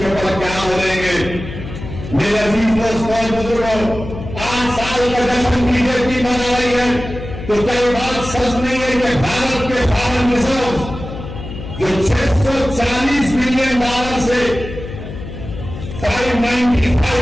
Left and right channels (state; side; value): noise; left; hum, 10 dB below the sound